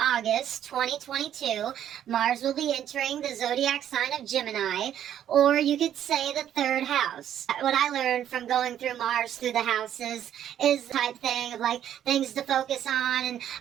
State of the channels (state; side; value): quieter; left; 10.5 dB